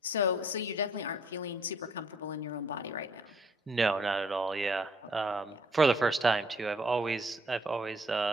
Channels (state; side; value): normal; both; correlation 0.63